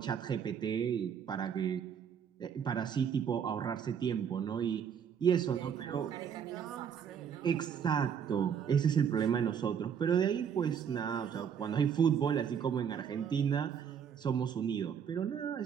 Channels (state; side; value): quieter; left; 7.8 dB